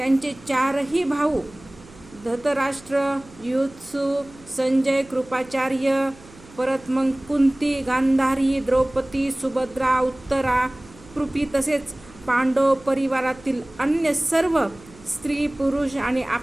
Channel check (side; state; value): right; noise; hum, 23 dB below the sound